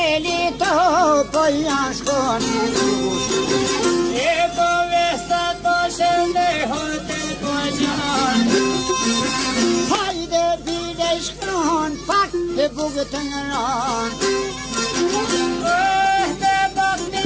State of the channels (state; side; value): identical; both; correlation 1.00